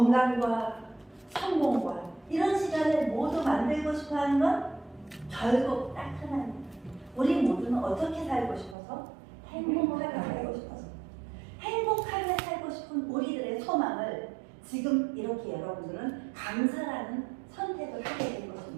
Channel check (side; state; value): left; drops out; at 8.8 s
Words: 성공과 이런 시간을 모두 만들고 싶어하는 건 결국 딱 하나입니다. 우리 모두는 어떻게 살고 싶어서? 행복하게 살고 싶어서. 행복하게 살고 싶은 우리들의 소망을 지금 이렇게 여러분들은 강사라는 선택을 하게 된